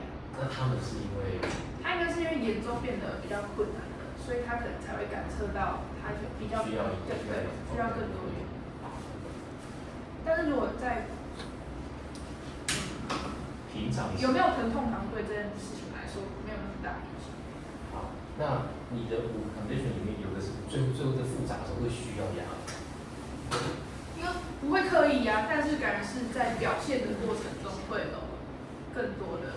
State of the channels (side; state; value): both; identical; correlation 1.00